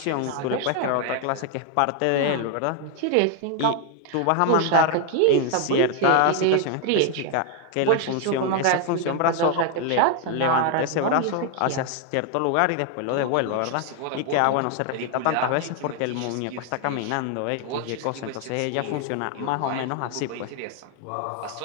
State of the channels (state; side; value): different; both; correlation 0.01